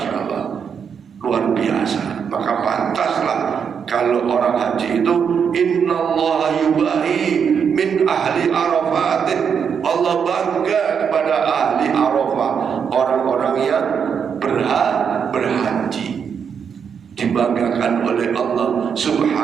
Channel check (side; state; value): left; quieter; 7.0 dB